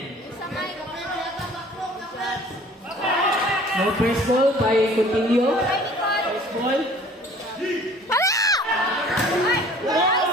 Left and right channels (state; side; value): normal; both; correlation 0.51